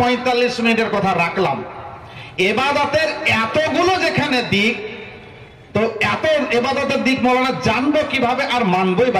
45 মিনিটের কথা রাখলাম। ইবাদতের এতগুলো যেখানে দিক, তো এত ইবাদতের দিক মৌলানা জানবো কিভাবে আর মানবই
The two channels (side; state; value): both; identical; correlation 1.00